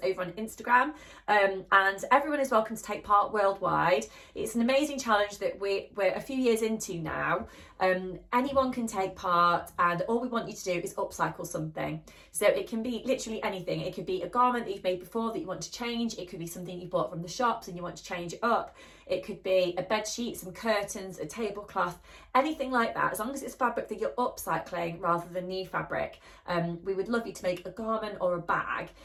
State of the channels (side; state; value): both; identical; correlation 1.00